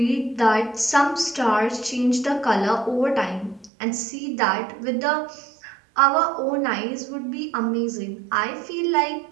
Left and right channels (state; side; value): drops out; left; at 3.7 s